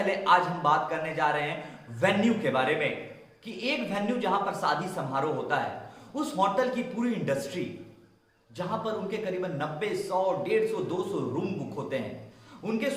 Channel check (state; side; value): identical; both; correlation 1.00